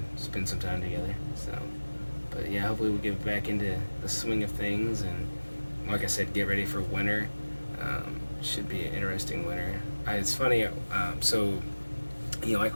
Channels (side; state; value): both; inverted; correlation -1.00